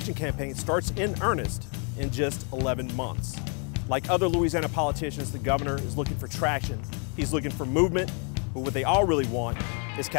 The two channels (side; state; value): right; quieter; 38.4 dB